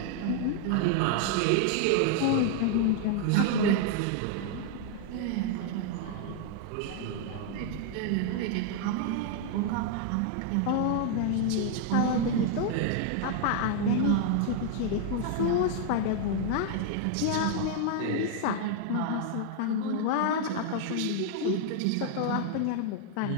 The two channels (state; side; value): different; both; correlation 0.00